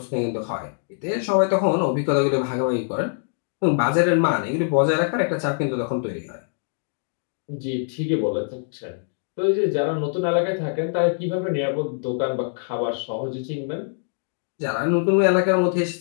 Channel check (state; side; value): silent; right; digital silence